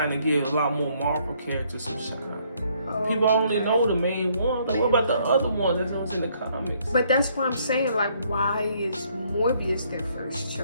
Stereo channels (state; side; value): inverted; both; correlation -0.67